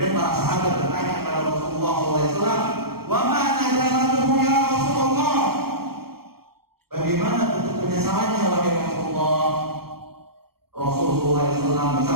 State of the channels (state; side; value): late; left; 0.94 ms